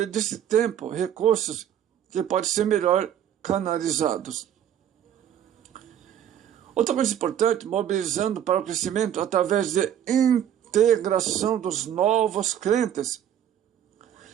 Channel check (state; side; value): quieter; left; 10.1 dB